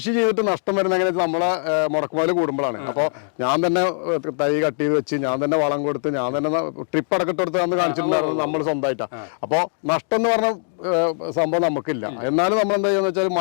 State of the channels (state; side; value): silent; right; digital silence